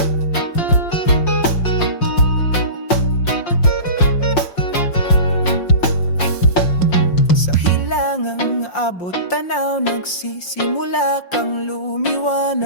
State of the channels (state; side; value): late; right; 5.6 ms